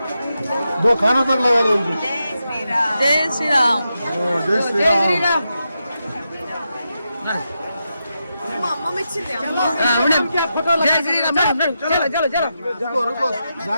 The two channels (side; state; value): both; inverted; correlation -0.87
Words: దో ఖానా తక్ లగాలో. జై శ్రీరామ్. జై శ్రీరామ్. रुको रुको,